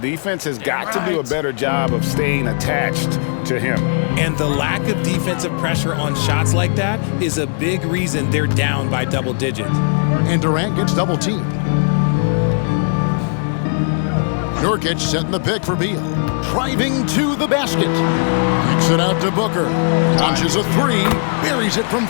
has got to do a better job of staying attached to him. And the lack of defensive pressure on shots like that is a big reason they're down by double digits. And Durant gets double teamed. Nurkic setting the pick for Beal. Driving to the basket. Kicks it out to Booker. Launches a 3. Buries it from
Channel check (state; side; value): silent; right; 68 dB below the other